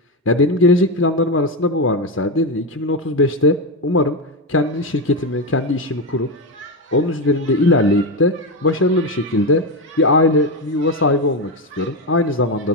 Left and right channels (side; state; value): both; normal; correlation 0.12